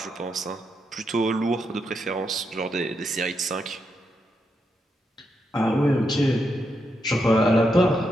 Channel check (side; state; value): both; normal; correlation 0.83